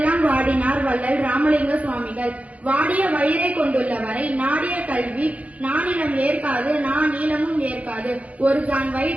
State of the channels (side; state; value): left; late; 0.067 ms